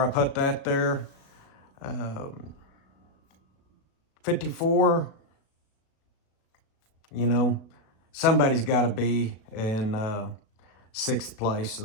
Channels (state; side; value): late; right; 37 ms